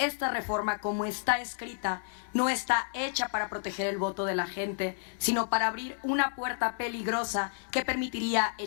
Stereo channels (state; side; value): silent; right; digital silence